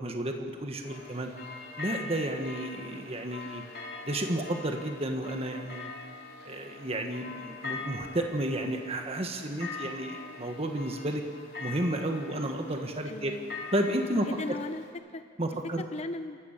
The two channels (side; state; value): both; normal; correlation 0.55